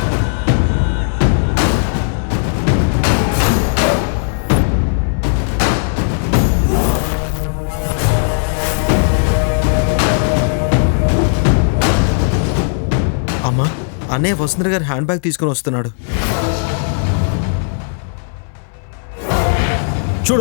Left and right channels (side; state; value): right; silent; 63 dB below the other